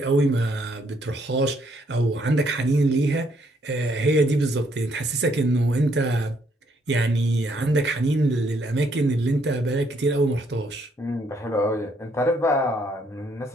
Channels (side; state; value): both; normal; correlation 0.70